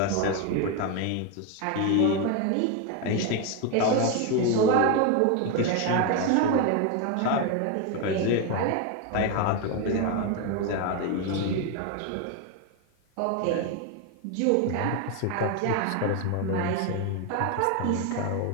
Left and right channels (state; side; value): different; both; correlation 0.02